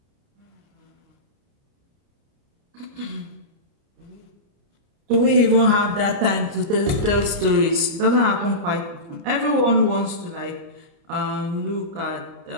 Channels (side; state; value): left; late; 29 ms